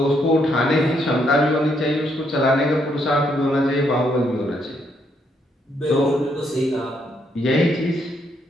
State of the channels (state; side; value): normal; both; correlation 0.74